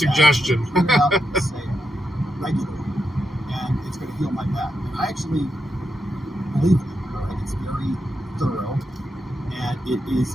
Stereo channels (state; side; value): normal; both; correlation 0.85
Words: Regularly, and it's going to heal my back. And I actually believe it. Right? It's very thorough, and it is